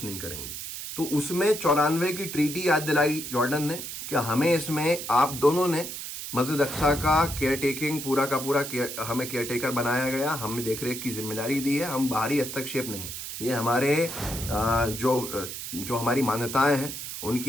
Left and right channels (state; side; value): noise; right; hiss, 7 dB below the sound